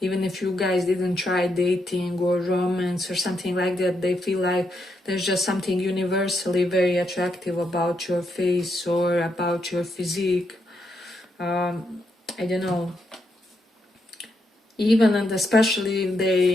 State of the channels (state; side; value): normal; both; correlation 0.80